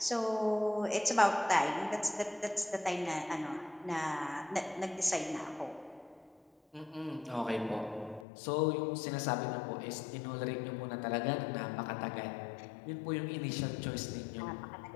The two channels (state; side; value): drops out; right; at 8.2 s